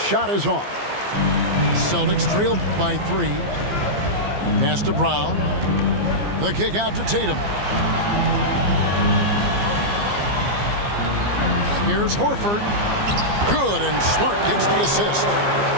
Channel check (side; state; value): left; late; 15 ms